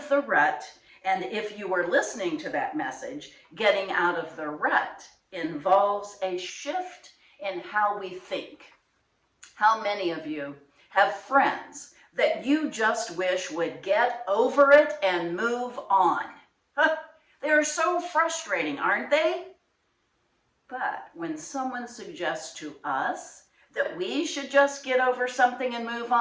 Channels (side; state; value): both; identical; correlation 1.00